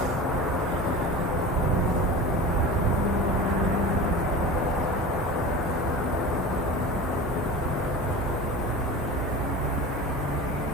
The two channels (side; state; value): both; normal; correlation 0.33